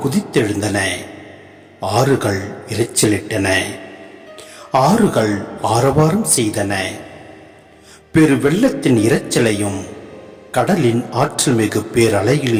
குதித்தெழுந்தன, ஆறுகள் இரைச்சலிட்டன, ஆறுகள் ஆரவாரம் செய்தன. பெரு வெள்ளத்தின் இரைச்சலையும் கடலின் ஆற்றல் மிகு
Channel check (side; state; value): both; identical; correlation 1.00